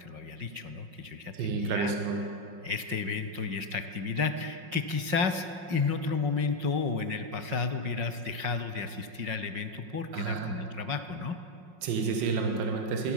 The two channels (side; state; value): left; late; 5.5 ms